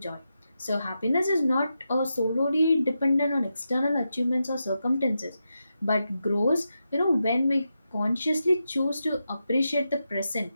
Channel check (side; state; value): both; inverted; correlation -0.88